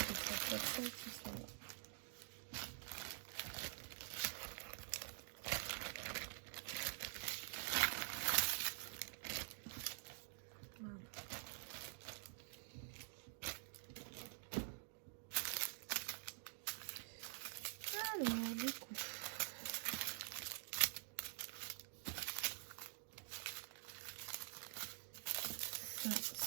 160 qui sont là. Alors, du coup, ça,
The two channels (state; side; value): silent; left; digital silence